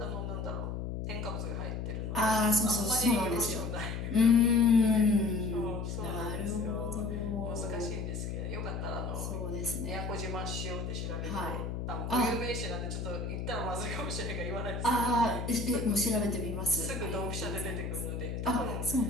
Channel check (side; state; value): left; noise; hum, 4 dB below the sound